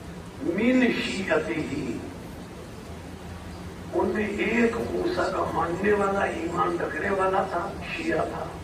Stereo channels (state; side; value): identical; both; correlation 1.00